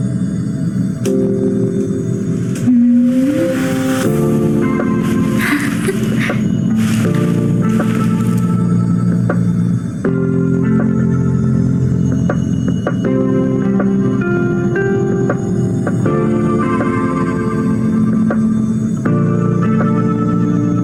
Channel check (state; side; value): noise; left; rumble, 26 dB below the sound